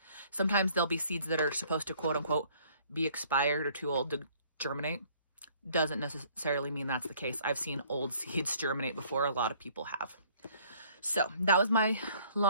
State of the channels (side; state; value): both; inverted; correlation -0.58